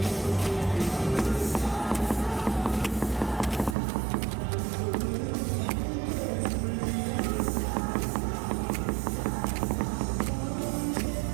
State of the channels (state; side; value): drops out; left; at 3.8 s